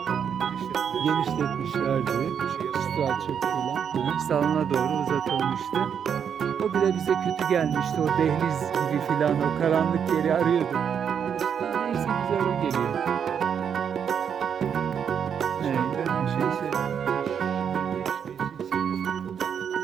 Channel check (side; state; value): left; quieter; 7.8 dB